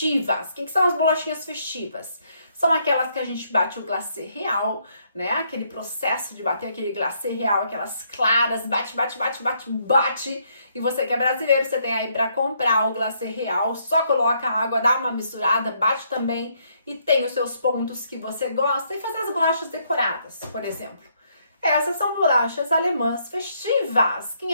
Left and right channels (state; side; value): inverted; both; correlation -0.72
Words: O que são as bolachinhas festivas? São aquelas que a gente bate o glacê real, né? Aquele processo de bater aquele glacê real, aquelas claras, bate. E você que é brasileiro, você tem aí para comprar o glacê real, só coloca a água, dá uma misturada, bate também e tem os seus pontos que você gosta e fazer as bolachas decoradas, por exemplo. Essas são bolachas alemãs festivas.